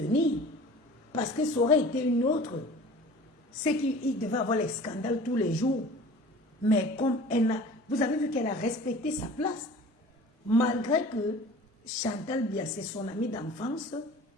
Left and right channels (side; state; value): both; normal; correlation 0.43